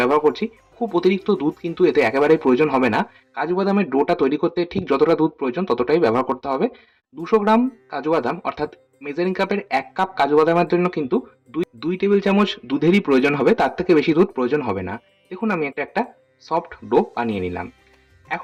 করছি। খুব অতিরিক্ত দুধ কিন্তু এতে একেবারেই প্রয়োজন হবে না। কাজু বাদামের ডোটা তৈরি করতে ঠিক যতটা দুধ প্রয়োজন ততটাই ব্যবহার করতে হবে। 200 গ্রাম কাজু বাদাম অর্থাৎ মেজারিং কাপের 1 কাপ কাজু বাদামের জন্য কিন্তু দুই টেবিল চামচ দুধেরই প্রয়োজন হবে, তার থেকে বেশি দুধ প্রয়োজন হবে না। দেখুন আমি একটা সফট ডো বানিয়ে নিলাম।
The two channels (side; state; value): both; identical; correlation 1.00